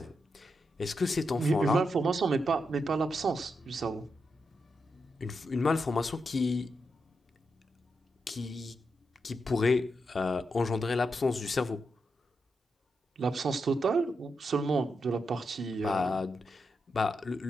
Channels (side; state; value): both; normal; correlation 0.85